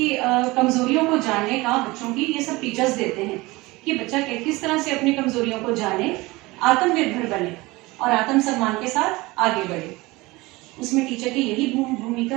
कमज़ोरियों को जानने का बच्चों की ये सब टीचर्स देते हैं कि बच्चा किस तरह से अपनी कमज़ोरियों को जाने, आत्मनिर्भर बने और आत्मसम्मान के साथ आगे बढ़े। उसमें टीचर की यही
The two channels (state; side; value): quieter; left; 21.7 dB